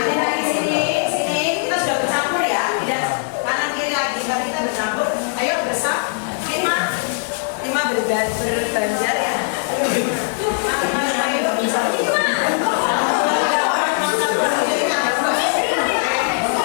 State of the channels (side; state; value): right; silent; 60 dB below the other